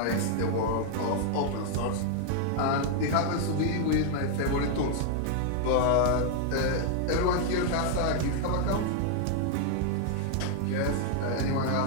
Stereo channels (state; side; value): different; both; correlation 0.00